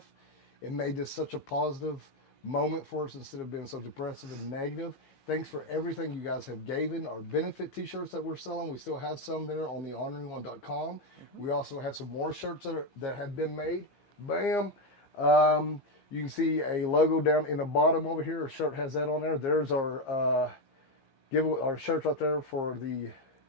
It made this such a positive moment for us instead of being so depressive and negative. Thanks for everything you guys have given. Our benefit t-shirts that we're selling, we still have some there on the orneryone.com. We also have some more shirts that have been made. Bam. You can see a logo down in the bottom over here. Our shirt has that on there. There's our our shirts right there for the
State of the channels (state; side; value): late; right; 15 ms